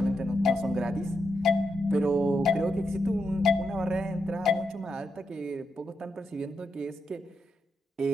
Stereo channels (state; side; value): normal; both; correlation 0.84